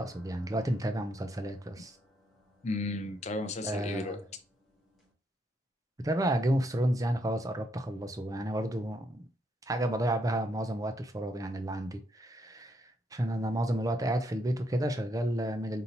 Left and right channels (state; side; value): normal; both; correlation 0.76